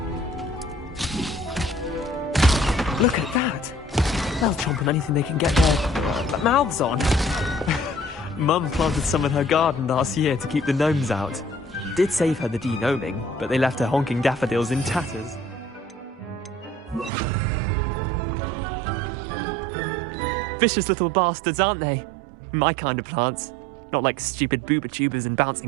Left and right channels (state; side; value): drops out; left; at 17.1 s